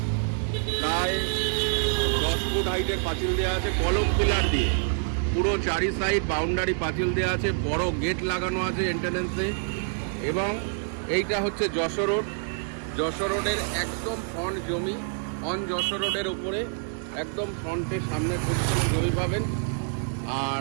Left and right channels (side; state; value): left; silent; 60 dB below the other